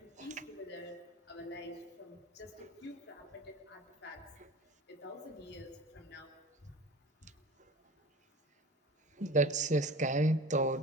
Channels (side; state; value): both; normal; correlation 0.38